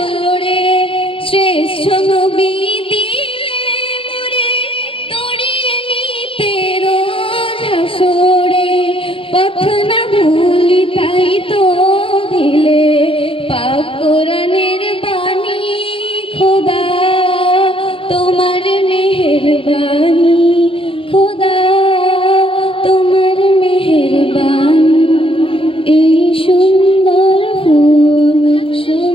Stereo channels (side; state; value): right; late; 0.26 ms